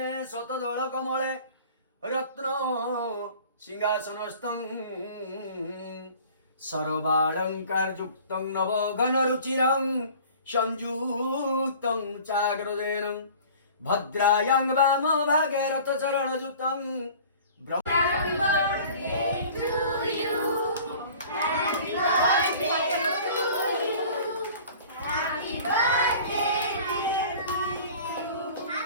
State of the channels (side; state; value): both; inverted; correlation -0.45